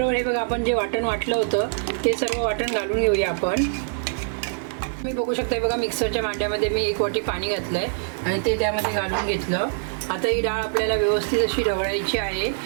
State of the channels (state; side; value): silent; left; digital silence